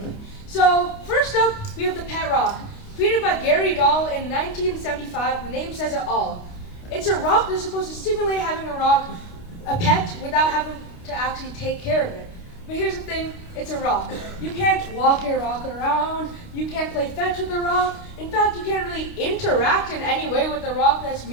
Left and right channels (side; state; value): right; late; 29 ms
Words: So first up, we have the pet rock. Created by Gary Dahl in 1975, the name says it all. It's a rock that's supposed to simulate having a pet without having to actually take care of it. But here's the thing, it's a rock. You can't walk your rock around, you can't play fetch with the rock. In fact, you can't really interact in any way with the rock that's